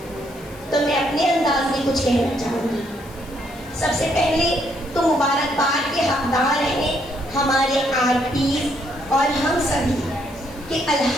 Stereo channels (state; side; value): noise; left; hiss, 23 dB below the sound